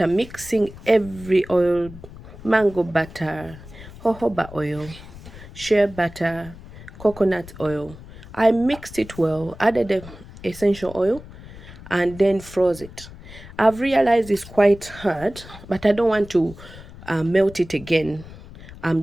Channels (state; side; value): noise; left; rumble, 17 dB below the sound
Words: mixing every oil, mango butter, jojoba oil, shea butter, coconut oil. I mixed it well, added the essential oil, and then froze it. I've realized it's quite hard, but I don't want to melt it again.